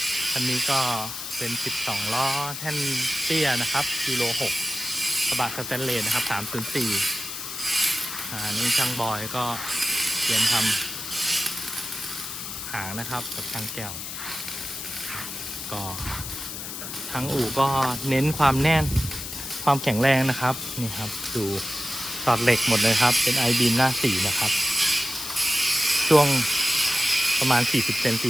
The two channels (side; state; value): left; noise; hiss, 7 dB below the sound